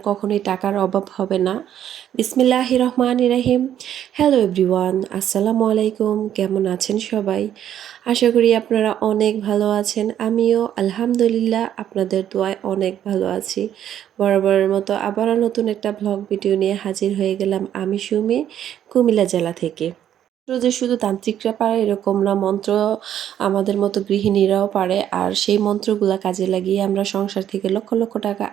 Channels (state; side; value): quieter; left; 10.5 dB